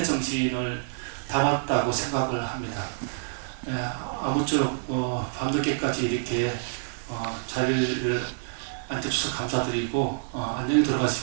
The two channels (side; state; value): left; silent; digital silence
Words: 정신을 담았다고 생각을 합니다. 아무쪼록 밤늦게까지 이렇게 자리를 앉아주셔서 감사드리고 안녕히